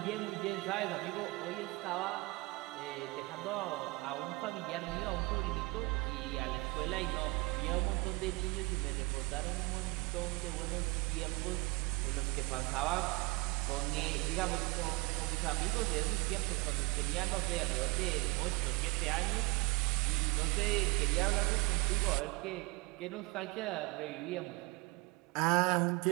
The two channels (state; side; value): quieter; left; 24.6 dB